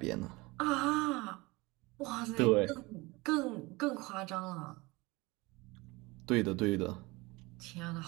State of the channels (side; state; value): left; quieter; 23.4 dB